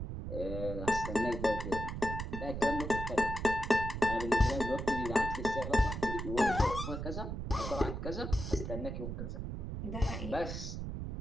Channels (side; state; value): right; noise; rumble, 5 dB below the sound